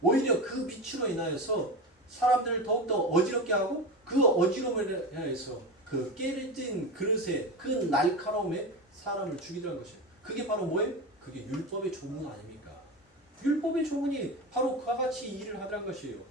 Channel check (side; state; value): both; normal; correlation 0.23